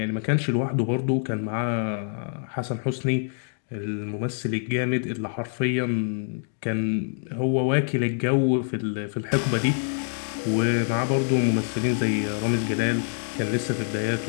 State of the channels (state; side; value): silent; right; digital silence